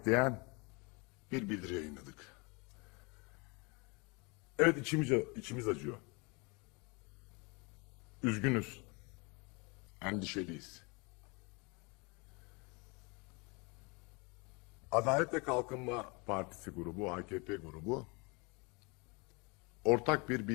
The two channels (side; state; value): right; quieter; 29.4 dB